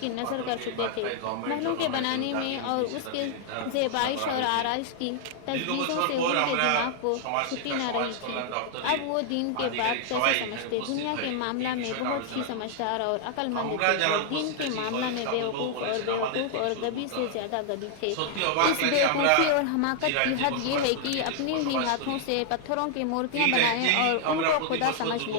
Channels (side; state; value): both; different; correlation 0.00